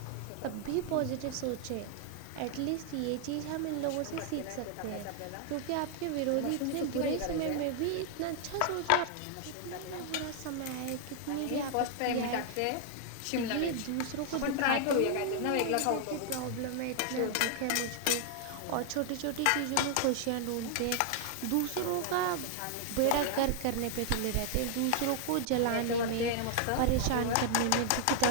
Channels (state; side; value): different; both; correlation 0.00